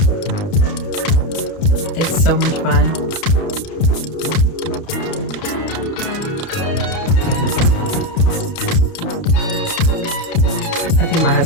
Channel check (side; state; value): right; late; 30 ms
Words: It's so much fun. I think my